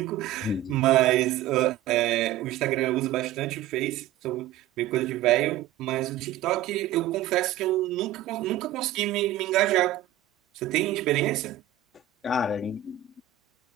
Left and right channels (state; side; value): quieter; left; 11.8 dB